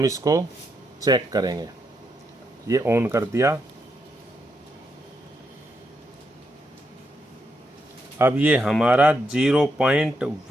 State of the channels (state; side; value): normal; both; correlation 0.81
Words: इसको चेक करेंगे। ये ऑन कर दिया। अब ये हमारा